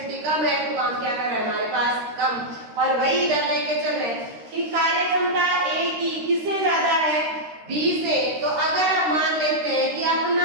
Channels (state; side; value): late; left; 13 ms